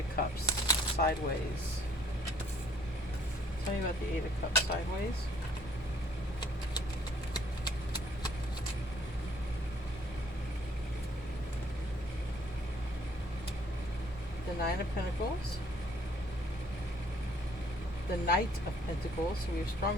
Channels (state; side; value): normal; both; correlation 0.62